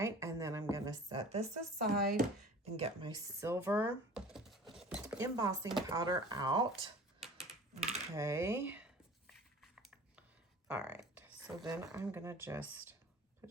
And then I'm going to set this aside and get my silver embossing powder out. Okay. All right, so then I'm gonna just put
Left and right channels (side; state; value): both; normal; correlation 0.43